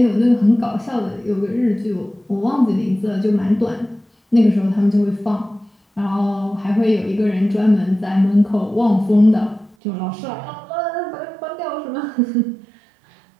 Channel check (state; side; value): drops out; left; at 9.8 s